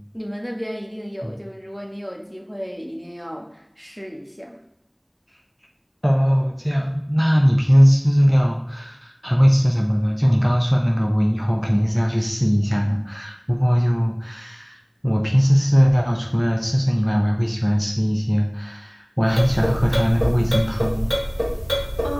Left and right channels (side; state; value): both; identical; correlation 1.00